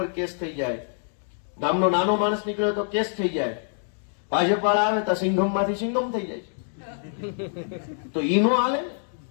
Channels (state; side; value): silent; right; digital silence